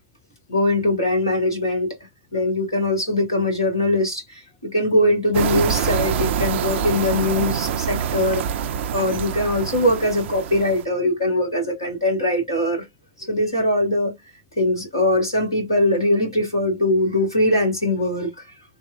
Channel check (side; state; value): both; inverted; correlation -0.50